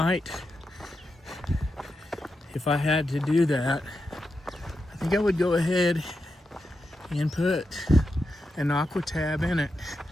if I had to do that, I think I would go ahead and put an aqua tab in it.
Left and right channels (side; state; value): both; normal; correlation 0.87